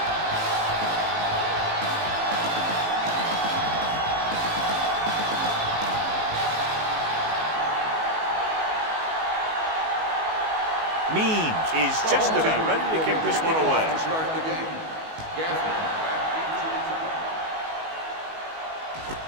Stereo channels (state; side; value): late; left; 19 ms